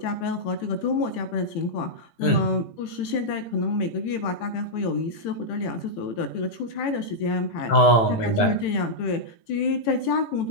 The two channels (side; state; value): right; late; 18 ms